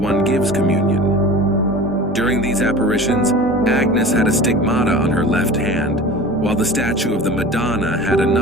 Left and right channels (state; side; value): normal; both; correlation 0.37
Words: gives communion. During these apparitions, Agnes had a stigmata on her left hand, while the statue of the Madonna had